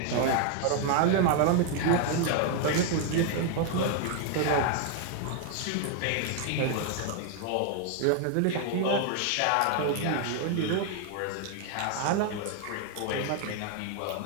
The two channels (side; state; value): both; different; correlation 0.00